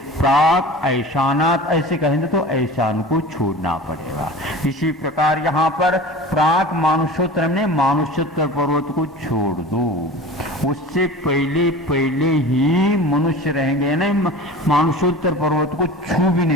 प्राक ऐशानात ऐसे कहेंगे तो ऐशान को छोड़ना पड़ेगा। इसी प्रकार यहाँ पर प्राक मानुषोत्तर में मानुषोत्तर पर्वत को छोड़ दो उससे पहले पहले ही मनुष्य रहेंगे, ना मानसोत्तर पर्वत को छू भी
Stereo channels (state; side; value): normal; both; correlation 0.36